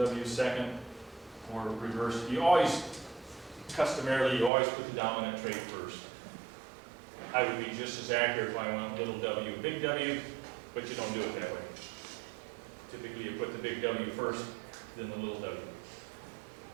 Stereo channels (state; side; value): drops out; left; at 4.5 s